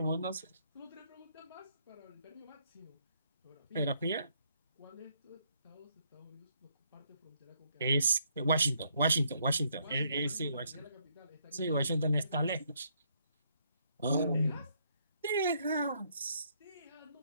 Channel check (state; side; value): inverted; both; correlation -0.71